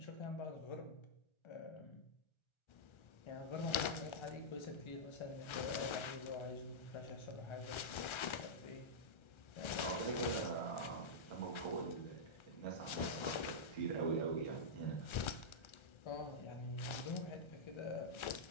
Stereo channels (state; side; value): late; right; 1.3 ms